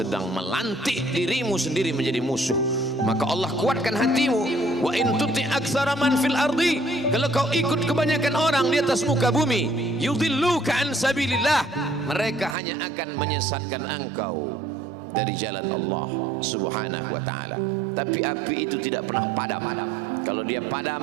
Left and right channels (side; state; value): left; drops out; at 12.6 s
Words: melantik dirimu sendiri menjadi musuh. Maka Allah kuatkan hatimu. Wa in tuti aktsara man fil ardi, kalau kau ikut kebanyakan orang di atas muka bumi, yudilluka an sabilillah, mereka hanya akan menyesatkan engkau dari jalan Allah subhanahu wa ta'ala. Tapi api itu tidak pernah padam. Kalau dia padam,